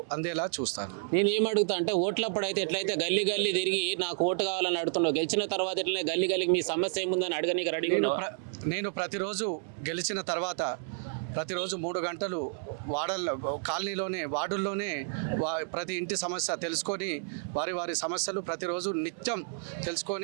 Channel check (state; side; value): silent; left; 57 dB below the other